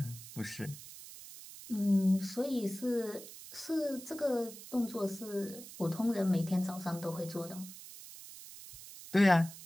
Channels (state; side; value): noise; right; hiss, 15 dB below the sound